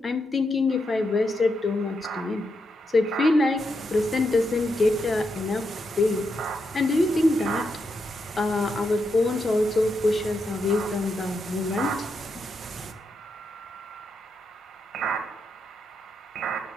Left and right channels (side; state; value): both; normal; correlation 0.83